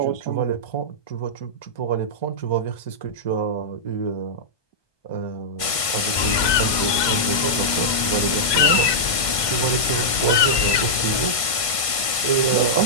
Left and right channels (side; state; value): right; late; 1.5 ms